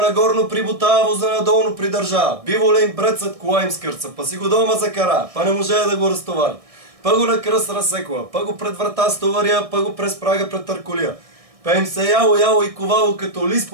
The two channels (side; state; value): left; late; 1.6 ms